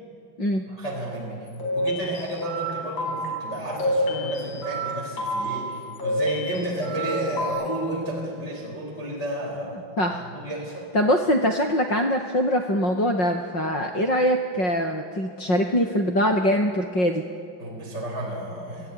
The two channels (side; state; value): right; late; 5.5 ms